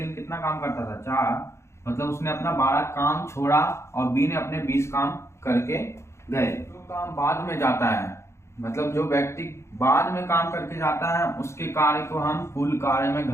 कितना काम करता था, 4, मतलब उसने अपना 12 काम छोड़ा और बी ने अपने 20 काम करके गए। जो काम बाद में जाता है, मतलब जो व्यक्ति बाद में काम करके जाता है उसके कार्य को हम कुल कार्य में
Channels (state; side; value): late; right; 0.13 ms